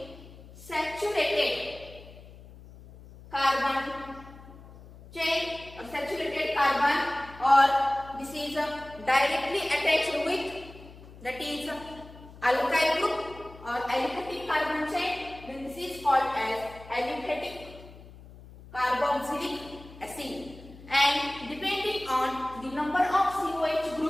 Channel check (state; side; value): noise; left; hum, 19 dB below the sound